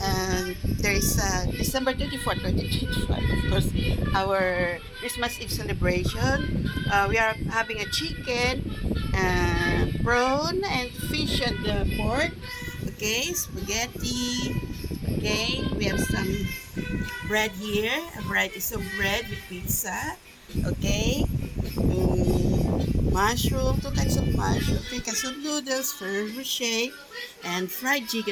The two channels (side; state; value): both; identical; correlation 1.00